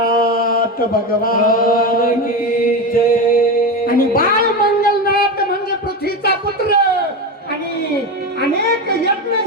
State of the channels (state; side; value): normal; both; correlation 0.19